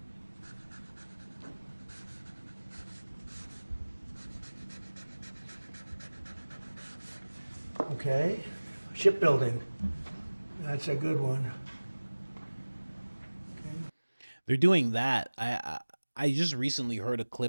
Okay, shipbuilding. That's a good one. They're doing that. I just recently heard a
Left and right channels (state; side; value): inverted; both; correlation -1.00